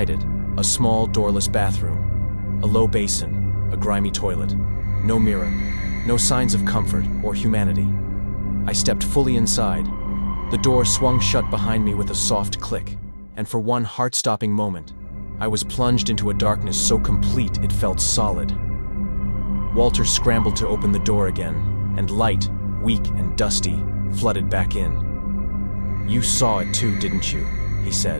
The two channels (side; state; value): both; inverted; correlation -1.00